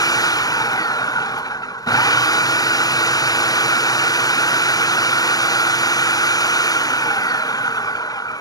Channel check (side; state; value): right; late; 0.18 ms